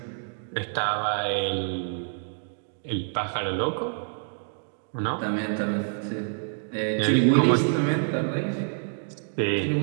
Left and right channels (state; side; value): silent; left; digital silence